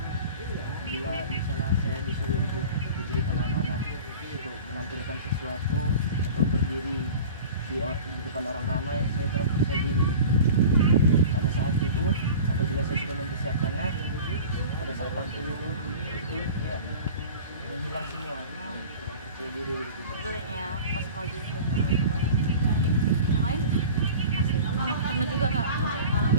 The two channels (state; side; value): inverted; both; correlation -0.38